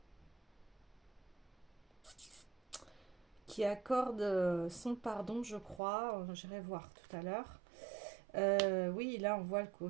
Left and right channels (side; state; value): left; drops out; at 5.8 s